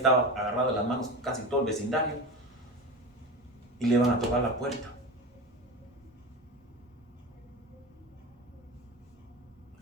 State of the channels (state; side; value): normal; both; correlation 0.26